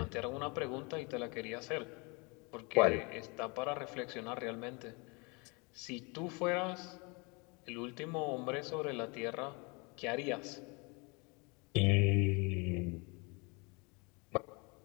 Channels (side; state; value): right; quieter; 29.7 dB